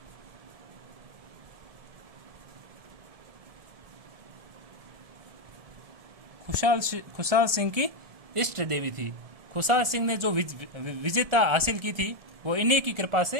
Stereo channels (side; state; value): left; late; 1.7 ms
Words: खुशहाल सिंह की इष्ट देवी थी। खुशहाल सिंह ने जो विजेता हासिल की थी वो इन्हीं की कृपा